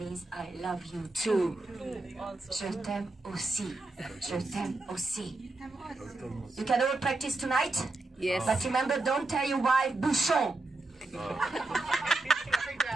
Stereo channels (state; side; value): quieter; left; 3.1 dB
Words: I love you too. Je t'aime aussi. Je t'aime aussi. You can all practice tonight? Yes. But remember, don't tell your wife bouchon.